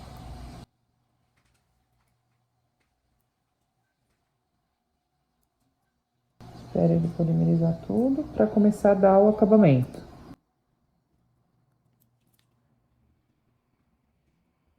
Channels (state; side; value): identical; both; correlation 1.00